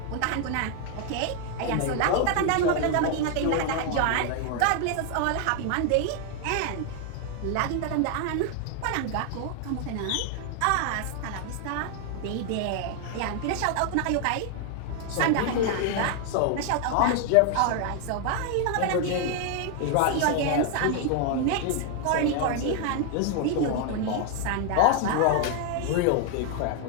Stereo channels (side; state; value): both; different; correlation 0.00